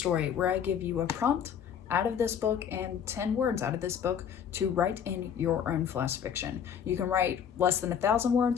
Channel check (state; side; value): quieter; right; 8.2 dB